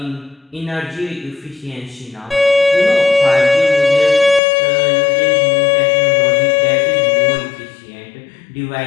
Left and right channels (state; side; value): drops out; right; at 4.4 s